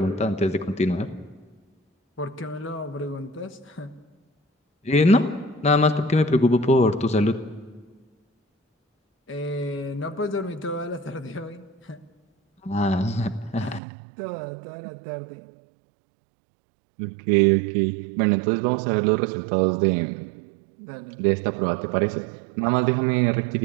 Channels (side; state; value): left; drops out; at 13.8 s